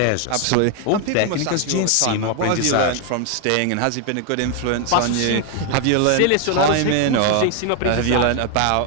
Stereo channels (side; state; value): both; different; correlation 0.01